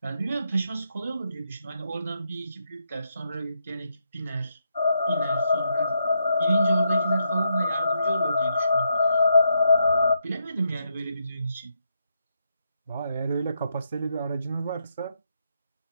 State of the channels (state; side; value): inverted; both; correlation -0.80